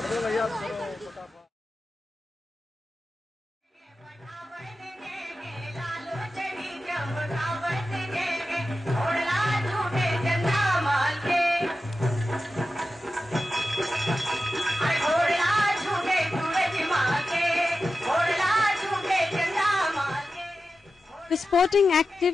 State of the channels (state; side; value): normal; both; correlation 0.92